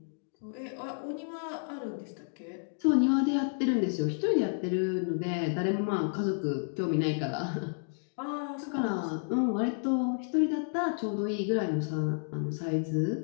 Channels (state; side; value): silent; right; digital silence